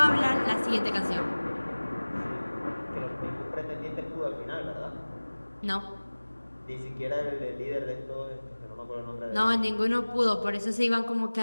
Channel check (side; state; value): both; inverted; correlation -1.00